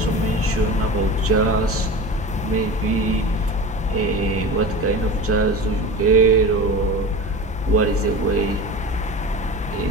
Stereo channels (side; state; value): both; normal; correlation 0.31